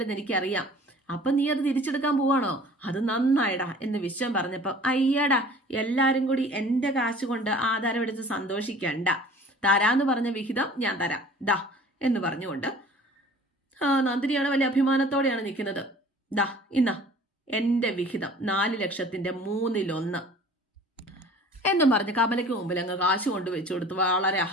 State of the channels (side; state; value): both; normal; correlation 0.47